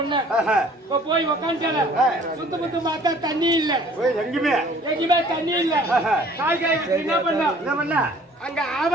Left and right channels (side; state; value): both; normal; correlation 0.54